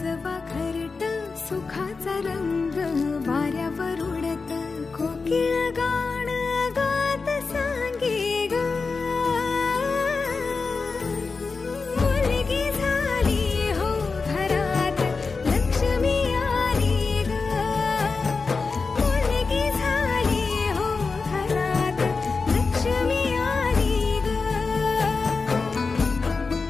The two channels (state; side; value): quieter; right; 4.4 dB